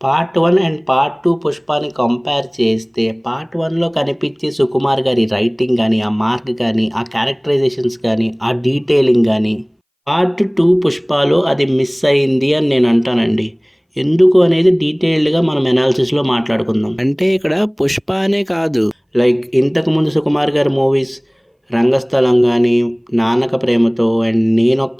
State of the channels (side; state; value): both; identical; correlation 1.00